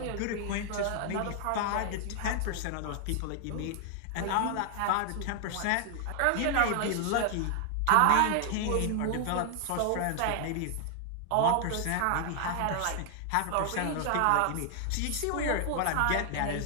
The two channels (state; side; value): different; both; correlation 0.00